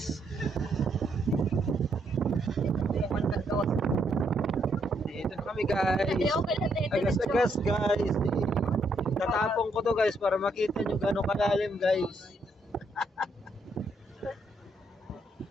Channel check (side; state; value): both; normal; correlation 0.74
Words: Dito na kami guys. Agas-Agas guys. Tatapong ko to guys para makita nyo gano'ng kalalim guys.